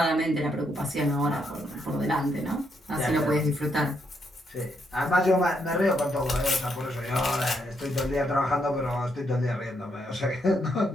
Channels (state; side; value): normal; both; correlation 0.76